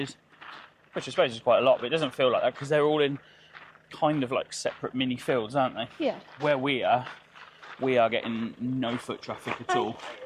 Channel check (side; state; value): both; identical; correlation 1.00